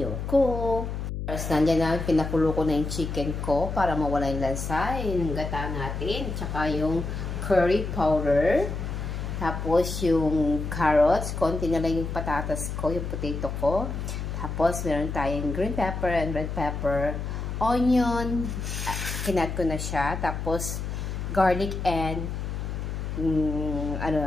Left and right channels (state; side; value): noise; left; hum, 4 dB below the sound